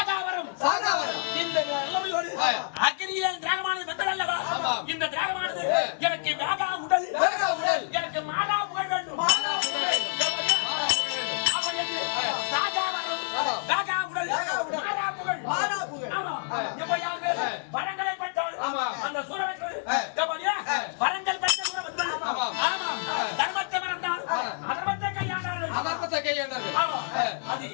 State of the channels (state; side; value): silent; right; 59 dB below the other